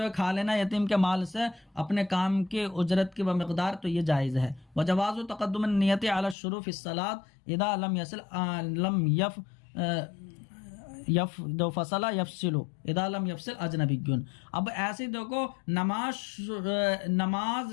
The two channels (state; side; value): drops out; right; at 6.4 s